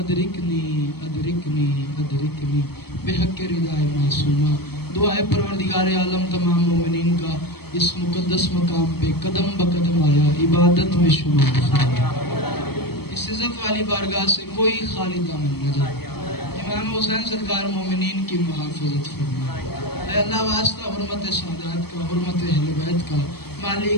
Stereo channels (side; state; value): right; late; 0.96 ms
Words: ادرکنی ادرکنی بحق ردائے معصومہ دعائے پروردگار عالم تمام مومنین کا اس مقدس مقام پہ قدم بقدم آیا عبادت میں شمار فرمایا اس عزت والی بارگاہ سے کوئی خالی دامن نہ جائے امام حسین سرکار مومنین کی محافظت فرمائے اے اللہ واسطہ حرمت سادات کا حرمت اہل بیت کا